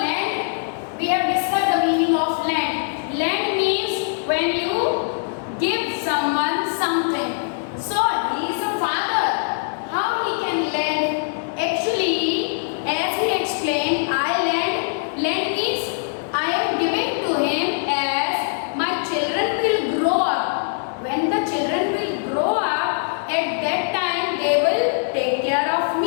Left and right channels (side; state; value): right; silent; 64 dB below the other